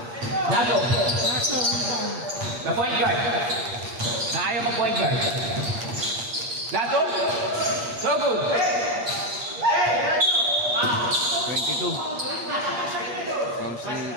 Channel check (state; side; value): late; left; 8.5 ms